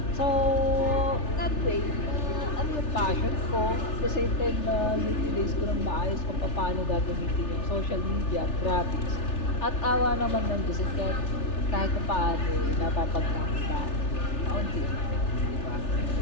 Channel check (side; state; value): right; late; 3.4 ms